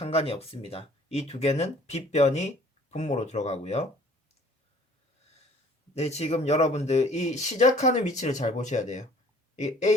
없습니다. 이 두 개는 빗변이 분모로 들어가고요. 네, 지금 여러분들 이 시작하는 위치를 잘 보셔야 돼요. 이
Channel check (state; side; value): normal; both; correlation 0.54